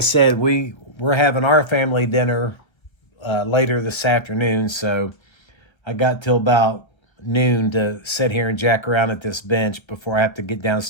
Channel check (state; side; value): late; right; 1.1 ms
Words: we're having our family dinner later this afternoon. So I got till about noon to sit here and jack around at this bench before I have to get